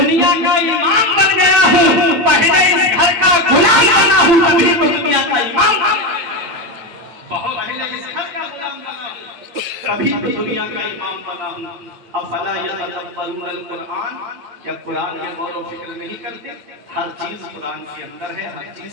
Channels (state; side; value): late; left; 8.7 ms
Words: کا امام بن گیا ہوں، پہلے اس گھر کا غلام بنا ہوں، تبھی تو دنیا کا امام بنا ہوں۔ بہت پہلے اس گھر کا غلام بنا ہوں، تبھی تو دنیا کا امام بنا ہوں۔ افلا یتدبرون القرآن، یا قرآن میں غور و فکر نہیں کرتے؟ ہر چیز قرآن کے اندر ہے، ہر